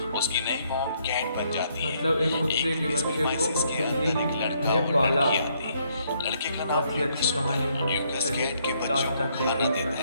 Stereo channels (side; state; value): both; inverted; correlation -0.71